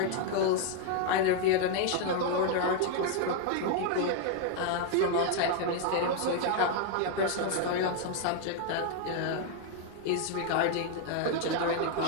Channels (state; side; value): different; both; correlation 0.00